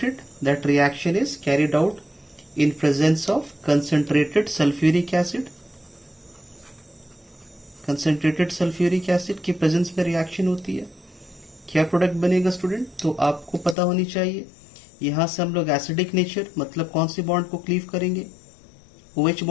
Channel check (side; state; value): right; drops out; at 13.8 s